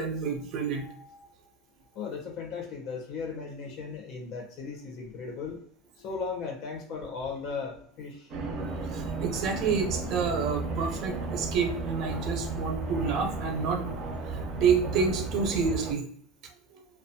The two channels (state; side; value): quieter; left; 3.7 dB